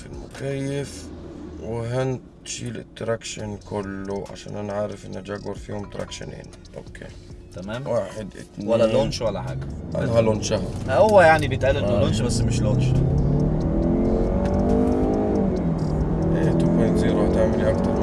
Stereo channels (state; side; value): identical; both; correlation 1.00